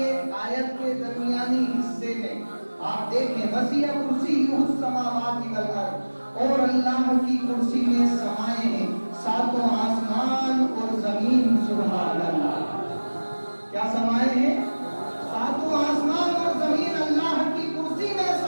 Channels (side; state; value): both; inverted; correlation -1.00